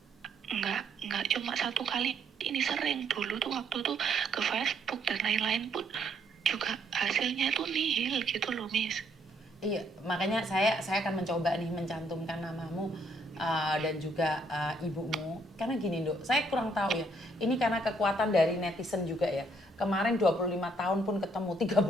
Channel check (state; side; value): normal; both; correlation 0.69